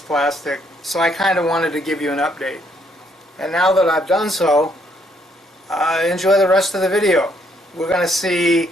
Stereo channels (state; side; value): normal; both; correlation 0.70